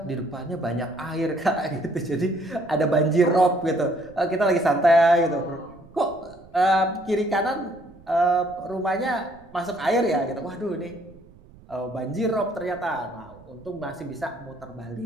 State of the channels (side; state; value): right; noise; rumble, 24 dB below the sound